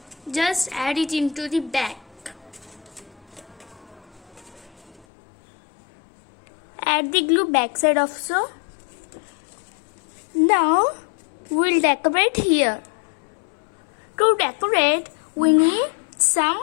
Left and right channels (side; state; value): right; drops out; at 5.1 s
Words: Just add it into the back. Add the glue backside also. Now we'll decorate here. To decorate, we need